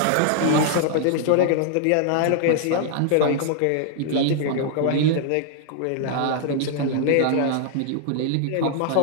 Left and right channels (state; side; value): different; both; correlation 0.00